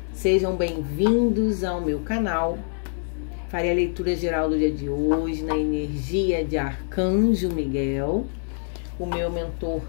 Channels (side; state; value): right; silent; digital silence